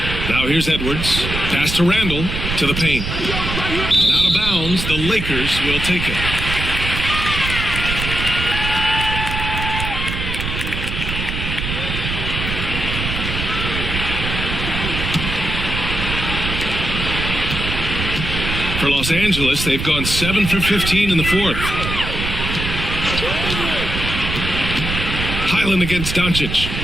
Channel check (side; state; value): right; noise; rumble, 4 dB below the sound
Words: Now here's Edwards. Pass to Randall to the paint. And out of bounds, the Lakers will take it. For Los Angeles, they've gone 7 for 15 in the fourth. Highland against Doncic.